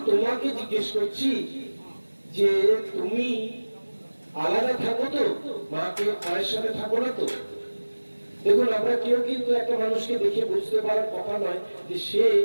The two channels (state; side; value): inverted; both; correlation -1.00